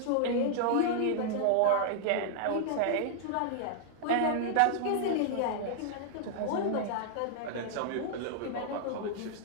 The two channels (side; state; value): both; different; correlation -0.01